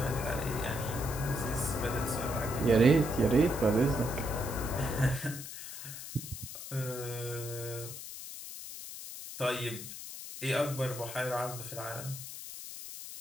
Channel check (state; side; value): noise; left; hiss, 10 dB below the sound